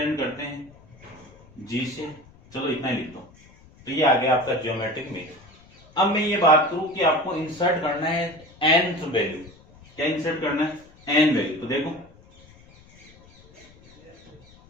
करते हैं जी से, चलो इतना ही लिख दो। तो ये आ गया आपका ज्योमेट्रिक मीन। अब मैं ये बात करूं कि आपको इंसर्ट करना है nth वैल्यू। क्या इंसर्ट करना है, n वैल्यू। तो देखो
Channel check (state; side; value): noise; left; rumble, 26 dB below the sound